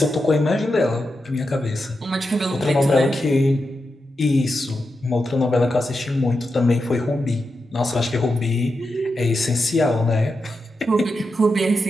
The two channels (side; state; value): both; normal; correlation 0.88